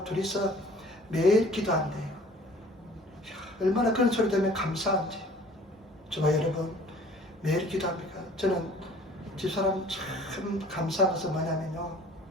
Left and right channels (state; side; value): normal; both; correlation 0.51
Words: 둘이서 매일 기도한대요. 얼마나 그런 소리 들으면 감사한지. 저와 여러분 매일 기도합니까? 저는 집사람 참 감사한 것은 뭐냐면요.